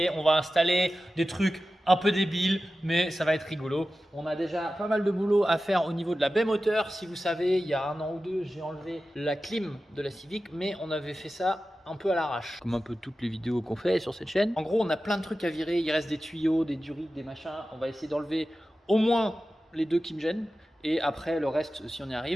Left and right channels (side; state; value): both; normal; correlation 0.94